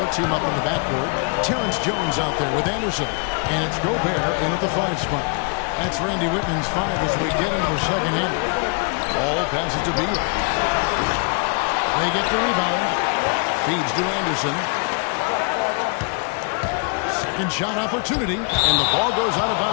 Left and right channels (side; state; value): right; quieter; 37.0 dB